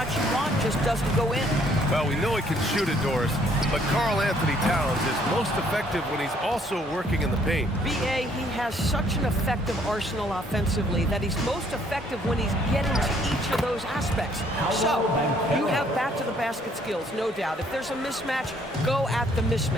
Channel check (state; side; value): normal; both; correlation 0.64